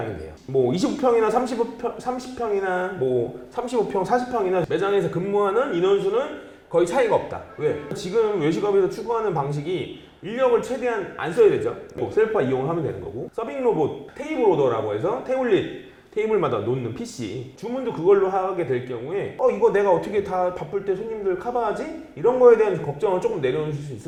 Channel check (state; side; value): identical; both; correlation 1.00